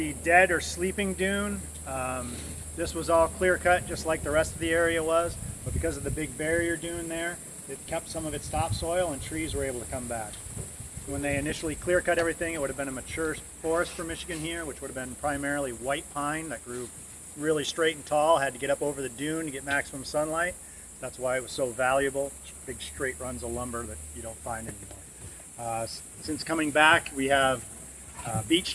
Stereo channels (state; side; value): identical; both; correlation 1.00